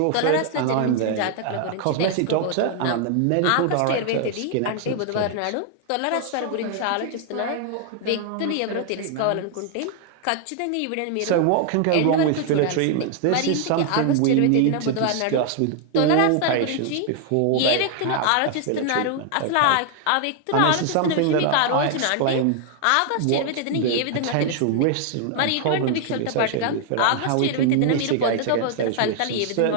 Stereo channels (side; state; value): both; different; correlation 0.00